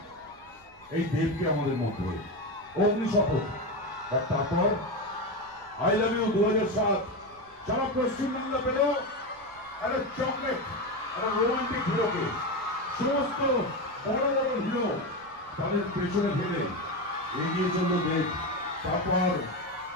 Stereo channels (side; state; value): right; noise; rumble, 28 dB below the sound